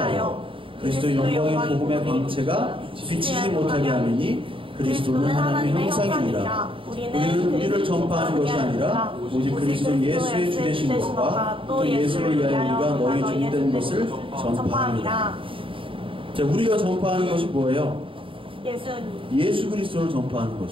그리스도 영광의 복음의 광채가 비치지 못하게 하느니 그리스도는 하나님의 형상이니라. 우리는 우리를 전파하는 것이 아니라 오직 그리스도 예수의 주되신 것과 또 예수를 위하여 우리가 너희 종된 것을 전파합니다. 자, 우리가 전파하는 것이 뭐예요? 예수 그리스도를 전파하는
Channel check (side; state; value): left; late; 0.25 ms